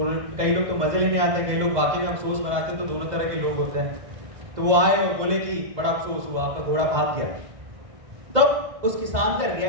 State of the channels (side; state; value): left; late; 2.0 ms